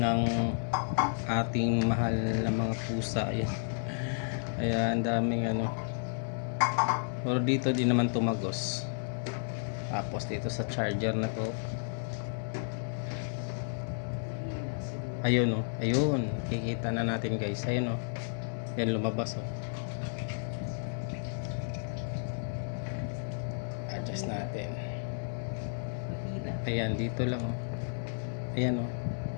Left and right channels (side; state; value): right; silent; 56 dB below the other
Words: ating mahal na mga pusa. Ayan. Kaya ang daming pero dito din naman tumagos. Tapos dito sa charger na to, ayun ayun, kikita na natin guys. Ayun yan lumabas adjust natin. Ayan, dito lang ayan